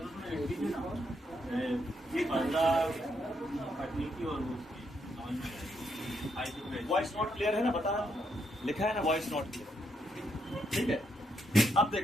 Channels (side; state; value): both; normal; correlation 0.77